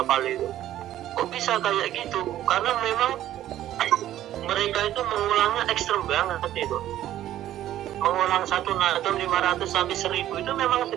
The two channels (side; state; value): left; quieter; 12.8 dB